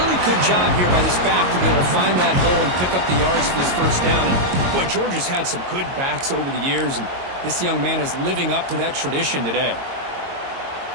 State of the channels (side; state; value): left; late; 22 ms